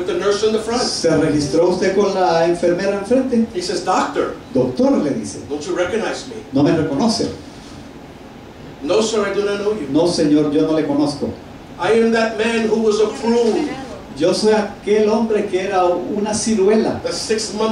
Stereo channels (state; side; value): identical; both; correlation 1.00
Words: the nurse in the front? ¿Se registró usted con la enfermera enfrente? He says, Doctor, Doctor, le dice, don't you recognize me? ¿no me reconoce? No, sir, I do not know you. No, señor, yo no le conozco. I am that man who was a prune. Yo soy aquel hombre que era una ciruela, That 6